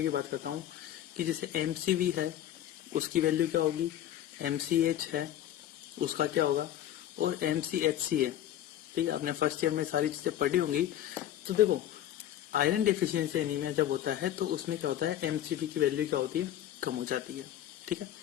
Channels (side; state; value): right; quieter; 11.8 dB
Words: की बात करता हूँ, कि जैसे एमसीवी है उसकी वैल्यू क्या होगी, एमसीएच है उसका क्या होगा, और एमसीएचसी है। ठीक है, आपने फर्स्ट ईयर में सारी चीजें पढ़ी होंगी। तो देखो आयरन डेफिशिएंसी एनीमिया जब होता है तो उसमें क्या होता है, एमसीवी की वैल्यू क्या होती है, कम हो जाती है। ठीक है,